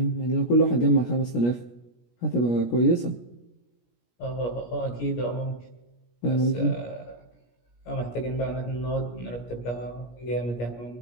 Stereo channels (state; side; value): late; right; 17 ms